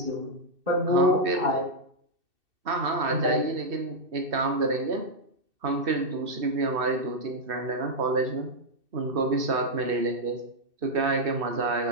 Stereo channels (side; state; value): left; late; 2.6 ms